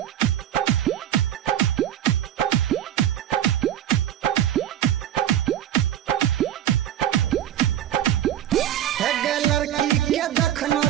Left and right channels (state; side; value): quieter; left; 11.2 dB